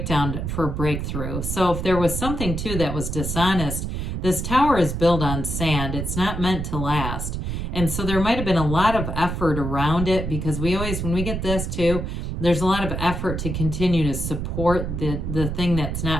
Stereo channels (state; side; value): noise; right; rumble, 3 dB below the sound